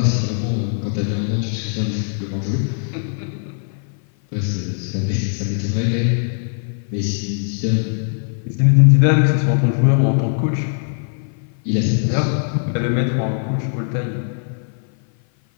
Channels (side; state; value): right; silent; 56 dB below the other